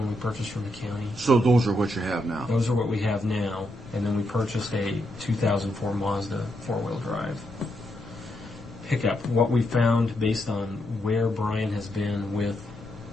we purchased from the county. So those are what you have now. Those are what we have now, and then we purchased a 2004 Mazda 4-wheel drive pickup. What we found, based on where Brian has been with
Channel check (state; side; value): noise; left; rumble, 19 dB below the sound